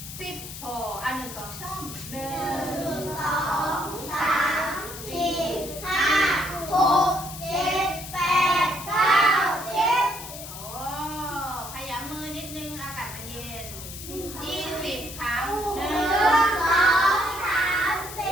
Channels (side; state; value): left; noise; hiss, 11 dB below the sound